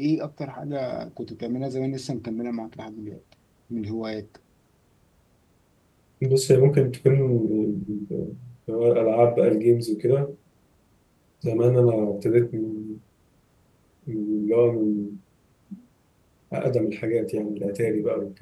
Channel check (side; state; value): both; identical; correlation 1.00